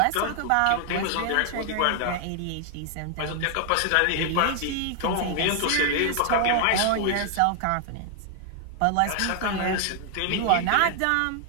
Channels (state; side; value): different; both; correlation 0.00